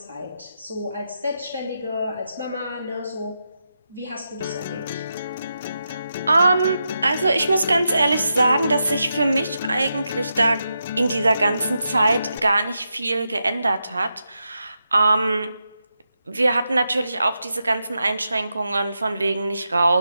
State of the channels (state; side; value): inverted; both; correlation -0.86